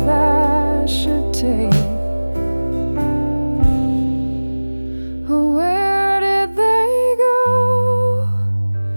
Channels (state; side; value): inverted; both; correlation -1.00